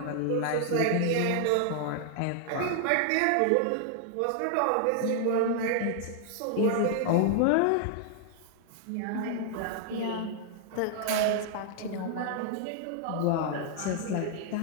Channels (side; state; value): both; different; correlation -0.01